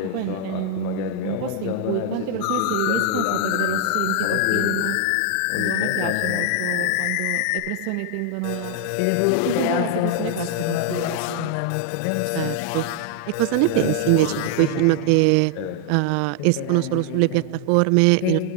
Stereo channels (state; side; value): different; both; correlation 0.00